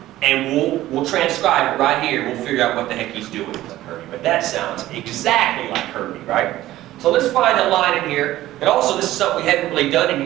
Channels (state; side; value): quieter; left; 15.1 dB